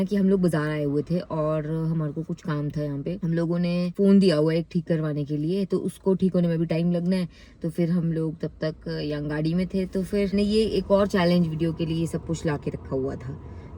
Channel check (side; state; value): both; identical; correlation 1.00